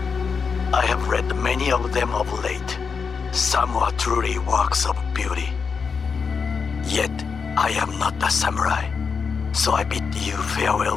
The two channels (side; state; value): right; quieter; 5.6 dB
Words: I have read many of them of late. Some are truly works of beauty. Yet, I am not a samurai, so I bid you